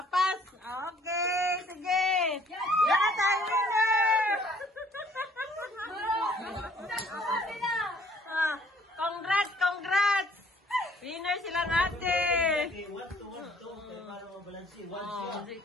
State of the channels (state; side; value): normal; both; correlation 0.59